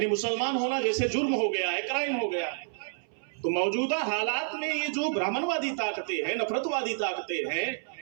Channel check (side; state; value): left; silent; 58 dB below the other